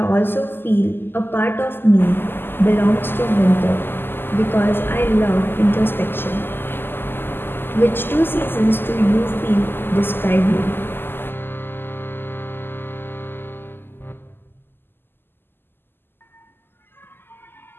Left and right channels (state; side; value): late; right; 0.10 ms